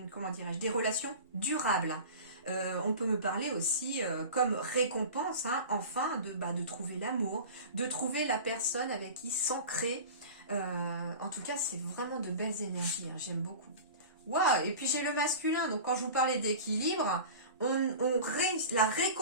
comment dirais-je, des relations durables. On peut me parler aussi comme récompense, hein, enfin, de trouver l'amour, de trouver la personne avec qui s'ancrer. En tout cas, c'est vraiment de belles énergies, hein, j'aime beaucoup. Waouh, et puis j'ai le masculin, donc quand je vous parlais d'équilibre, la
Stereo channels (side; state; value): both; inverted; correlation -0.35